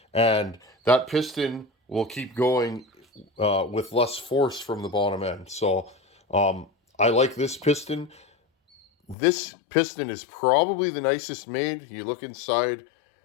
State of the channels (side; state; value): right; drops out; at 9.2 s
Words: and that piston will keep going with less force from the bottom end. So I like this piston. This piston is probably the nicest made. You look inside,